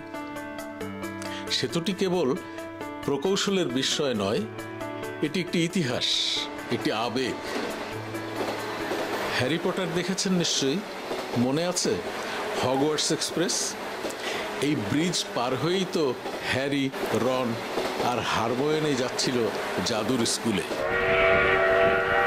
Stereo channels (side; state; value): both; identical; correlation 1.00